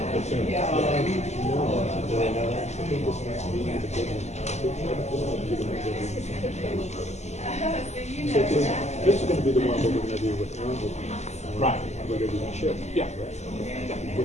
is going to be the one we're going to do with Aaron. Right. We're going to do the chip. Yeah.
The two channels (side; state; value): right; late; 0.33 ms